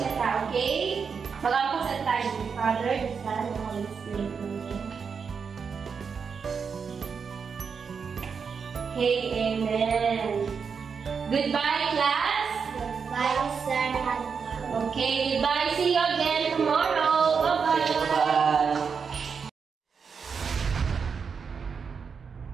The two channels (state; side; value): quieter; left; 6.0 dB